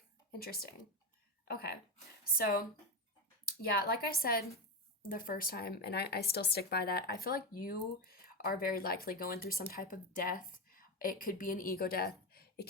Interesting. Okay, so yeah, like I said the first time, and I still stick by that, I feel like you are very likely going through some type of death. It could be an ego death. It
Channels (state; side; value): normal; both; correlation 0.17